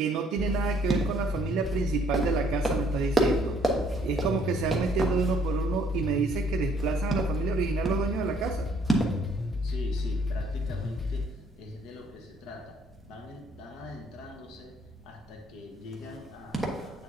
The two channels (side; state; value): both; normal; correlation 0.64